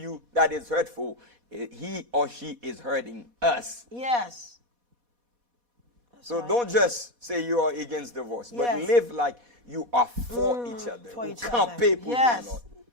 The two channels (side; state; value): left; late; 4.1 ms